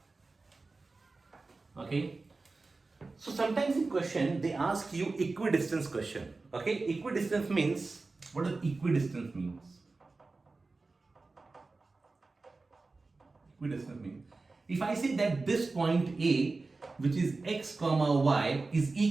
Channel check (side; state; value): left; quieter; 3.7 dB